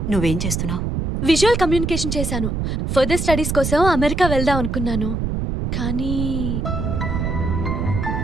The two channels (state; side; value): noise; right; rumble, 1 dB below the sound